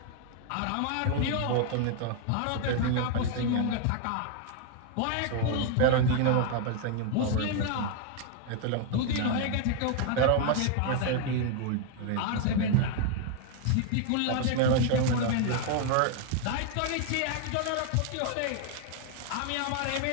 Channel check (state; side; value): different; both; correlation 0.00